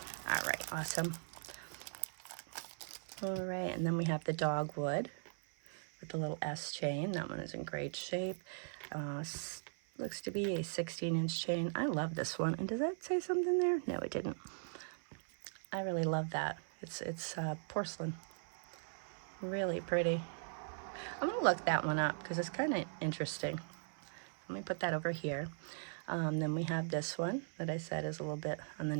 All right, awesome. All right, and then we have the dogwood with the little S chain. That one is in great shape. Looks to be a 16-inch chain. I love this one. And does that say something there? No, it didn't. I really love that. It's porcelain. Really pretty. I'm going to look that one up because it's kind of interesting. Let me put that over here. Then we have this one that I said is a little bit on the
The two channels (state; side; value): silent; left; 51 dB below the other